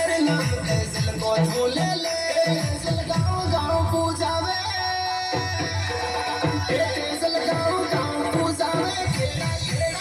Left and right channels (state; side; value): identical; both; correlation 1.00